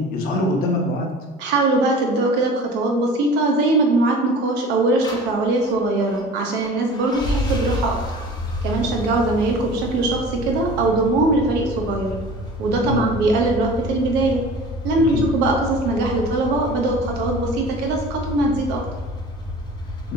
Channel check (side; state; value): both; normal; correlation 0.42